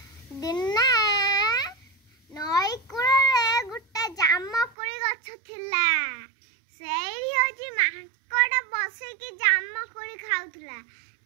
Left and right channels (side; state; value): left; drops out; at 4.8 s